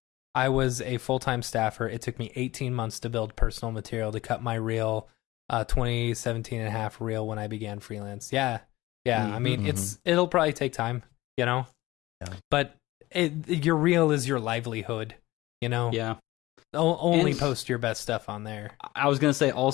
I was a full-time staffer. It took me 18 months to build personal material to cut my reel a 2017 and a half reel when I began freelance. Yeah. I mean, it'll probably take time, you know. Yeah. But your reel is your livelihood, you know. Yeah. Only And- post your best stuff on there. I was gonna say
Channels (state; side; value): quieter; right; 18.5 dB